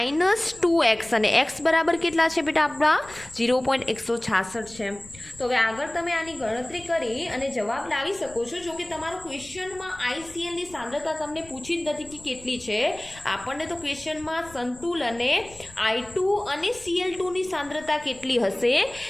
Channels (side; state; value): left; noise; rumble, 21 dB below the sound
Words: 2x અને x બરાબર કેટલા છે બેટા આપણા? 0.166 છે. તો હવે આગળ તમે આની ગણતરી કરી અને જવાબ લાવી શકો છો. જો કે તમારો ક્વેશ્ચનમાં IClની સાંદ્રતા તમને પૂછી જ નથી કે કેટલી છે. આપણને તો ક્વેશ્ચનમાં સંતુલને I2 અને Cl2ની સાંદ્રતા કેટલી હશે